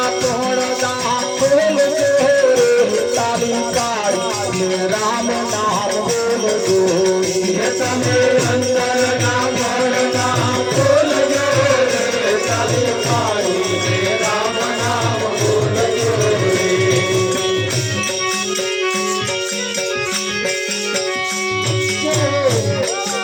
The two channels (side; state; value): both; identical; correlation 1.00